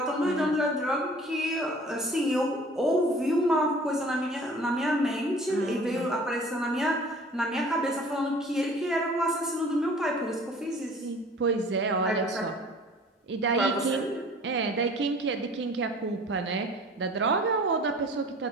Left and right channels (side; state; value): both; normal; correlation 0.48